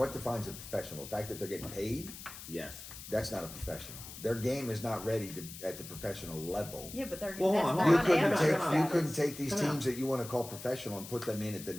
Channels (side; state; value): left; noise; hiss, 13 dB below the sound